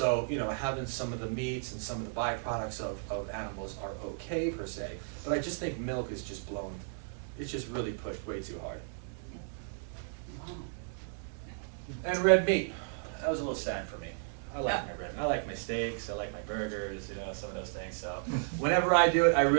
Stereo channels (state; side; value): silent; left; digital silence